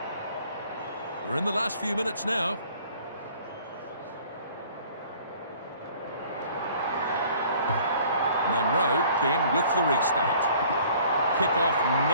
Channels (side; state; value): both; inverted; correlation -0.53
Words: We're in the last few minutes now. Munro then with the restart. Kick-off